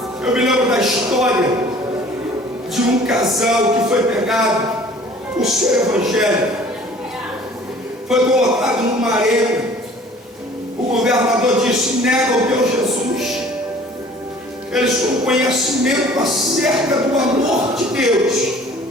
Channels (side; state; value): both; normal; correlation 0.50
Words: Eu me lembro da história de um casal que foi pegado por ser evangélico, foi colocado numa arena. O governador disse: nega o teu Jesus. Eles com conhecimento acerca do amor de Deus,